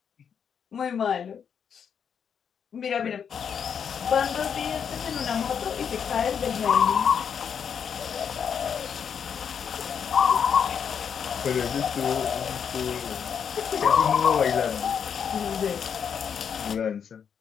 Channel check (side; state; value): right; quieter; 7.4 dB